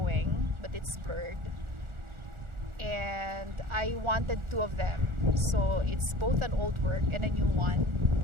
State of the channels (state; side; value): late; left; 1.4 ms